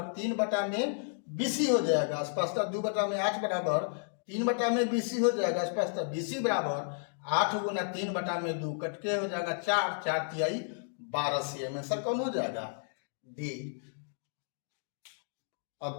3 बटा में BC हो जाएगा। स्पष्ट 2 बटा में 8 बराबर 3 बटा में BC हो जाएगा। स्पष्ट BC बराबर 8 गुना 3 बटा में 2 कटके हो जाएगा 4, 4 तिहाई 12 cm। आंसर कौन हो जाएगा, डी।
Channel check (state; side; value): silent; right; digital silence